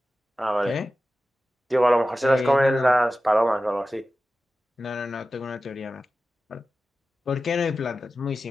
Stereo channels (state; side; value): normal; both; correlation 0.94